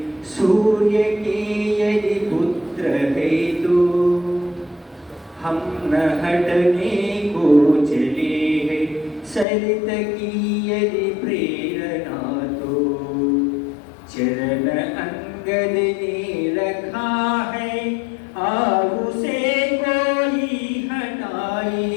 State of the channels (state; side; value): drops out; right; at 9.5 s